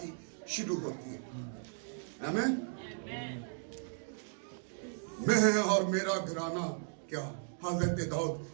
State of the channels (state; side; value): silent; left; digital silence